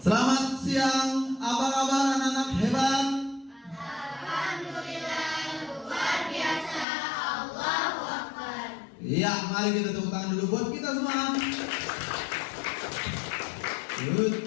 Selamat siang, apa kabar anak-anak hebat? Alhamdulillah, luar biasa. Allahu Akbar. Iya, mari kita tepuk tangan dulu buat kita semua.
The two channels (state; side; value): drops out; right; at 6.9 s